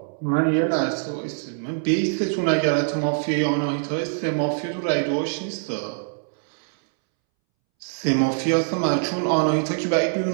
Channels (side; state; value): left; silent; 63 dB below the other